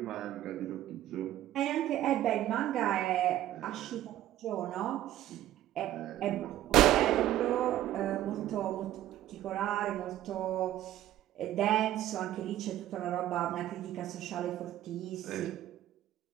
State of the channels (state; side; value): quieter; left; 13.3 dB